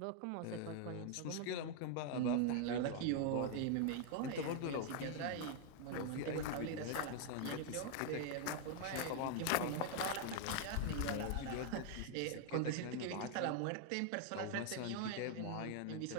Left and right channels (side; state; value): both; different; correlation 0.00